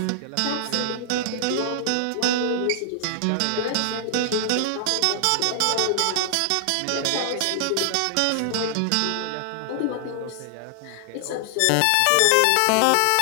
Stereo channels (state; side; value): different; both; correlation 0.00